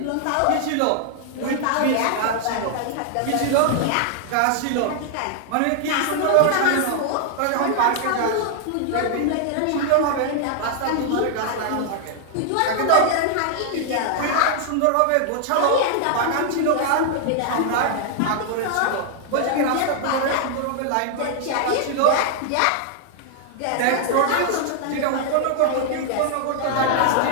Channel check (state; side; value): different; both; correlation 0.00